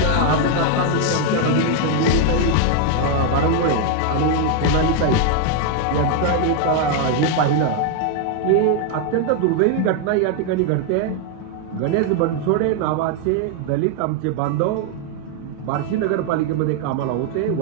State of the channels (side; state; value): both; different; correlation 0.00